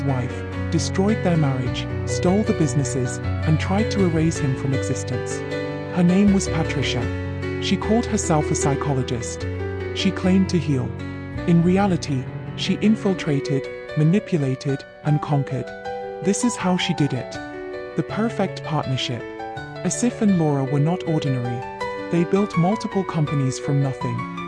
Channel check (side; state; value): both; identical; correlation 1.00